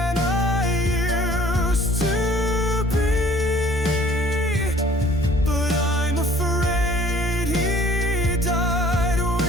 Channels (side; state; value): both; normal; correlation 0.54